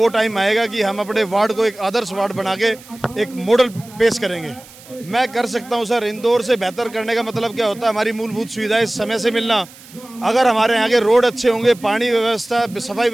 टाइम आएगा कि हम अपने वार्ड को एक आदर्श वार्ड बना के एक मॉडल पेश करेंगे। मैं कर सकता हूं सर, इंदौर से बेहतर करने का मतलब क्या होता है, हमारी मूलभूत सुविधाएं समय से मिलना। अगर हमारे यहाँ के रोड अच्छे होंगे, पानी व्यवस्था, सफाई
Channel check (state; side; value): noise; right; hiss, 21 dB below the sound